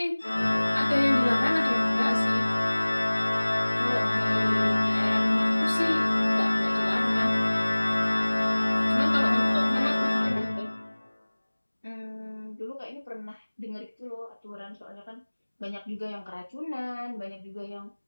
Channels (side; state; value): both; inverted; correlation -1.00